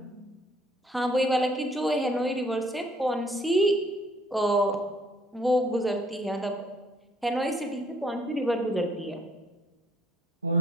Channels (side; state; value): both; normal; correlation 0.64